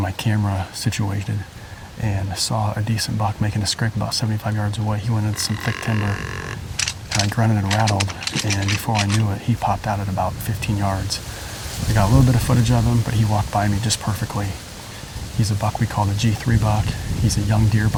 camera situated and saw a decent buck making a scrape about 75 yards away. He went into some thick timber, and I grunted and rattled, and before I knew it, he popped out at about 15 yards. I got a little bit of footage of him, but he walked by me just perfectly. He's a buck we call the G3 buck. He's a young deer,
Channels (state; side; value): identical; both; correlation 1.00